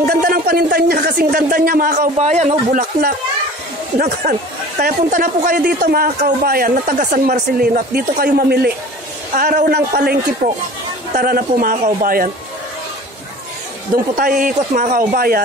ganda ng panintan niya. Kasing ganda niya mga kaubayan. Bulaklak. Kaya punta na po kayo dito mga kaubayan na taga San Marcelino at dito kayo mamili. Araw ng palengke po. Tara na po mga kaubayan. Doon po tayo ikot mga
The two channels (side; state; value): both; normal; correlation 0.42